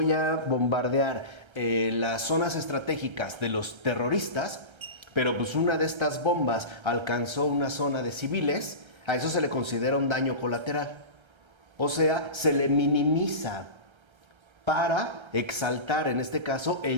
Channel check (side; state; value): left; late; 1.3 ms